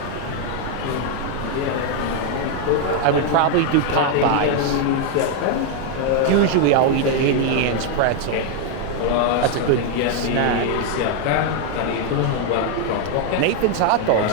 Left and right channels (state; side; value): different; both; correlation 0.01